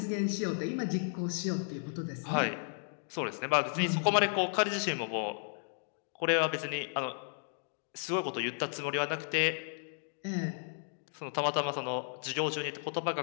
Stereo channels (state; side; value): silent; right; digital silence